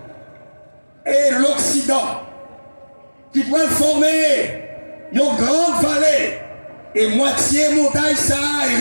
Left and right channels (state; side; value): inverted; both; correlation -1.00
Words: et l'Occident qui pourrait former une grande vallée et moitié montagne ça et